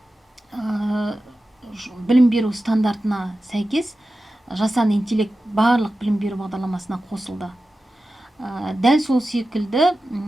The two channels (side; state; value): both; normal; correlation 0.93